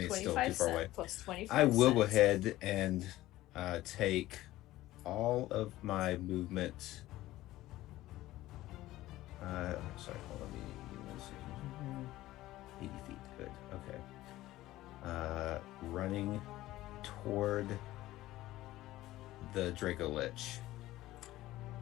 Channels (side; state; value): right; quieter; 16.2 dB